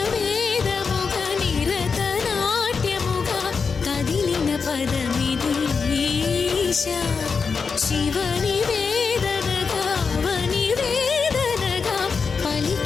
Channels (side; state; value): right; quieter; 5.3 dB